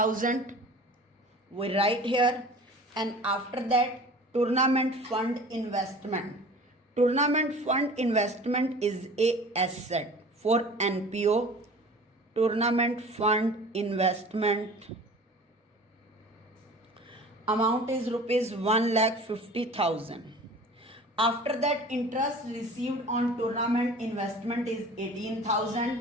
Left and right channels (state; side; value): normal; both; correlation 0.42